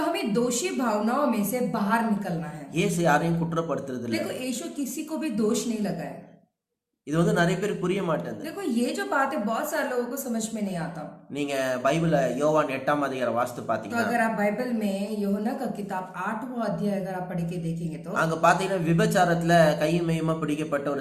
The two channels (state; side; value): identical; both; correlation 1.00